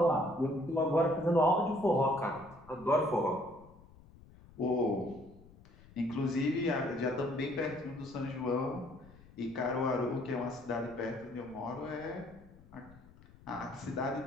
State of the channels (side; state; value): left; noise; rumble, 23 dB below the sound